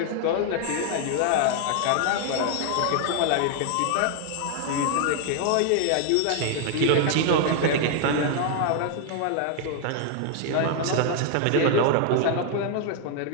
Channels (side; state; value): both; different; correlation 0.00